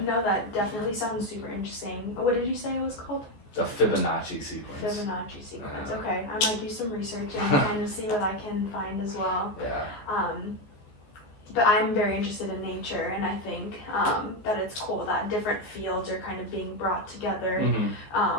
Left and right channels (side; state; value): right; late; 14 ms